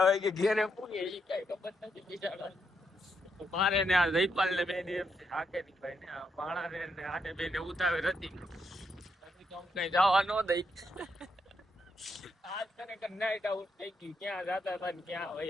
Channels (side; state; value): both; normal; correlation 0.80